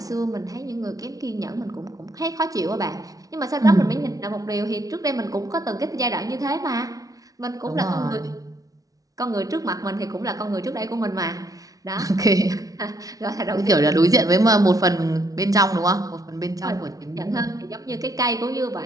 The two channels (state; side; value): late; left; 0.17 ms